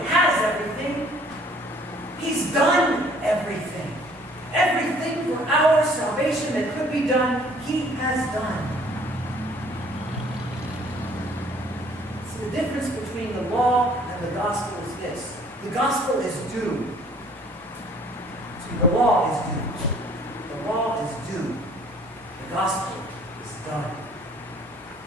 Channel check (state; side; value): normal; both; correlation 0.57